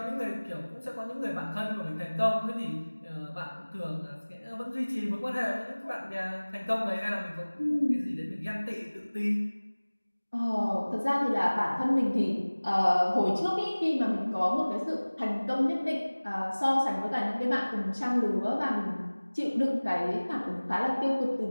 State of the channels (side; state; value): both; inverted; correlation -1.00